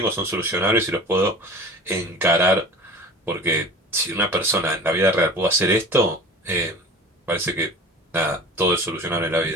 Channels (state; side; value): normal; both; correlation 0.39